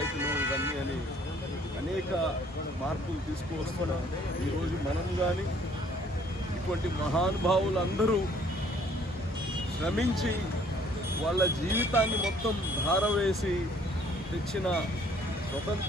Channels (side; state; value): both; normal; correlation 0.60